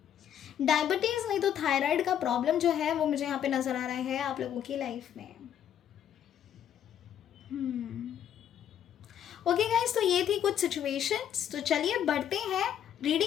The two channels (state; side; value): quieter; right; 9.8 dB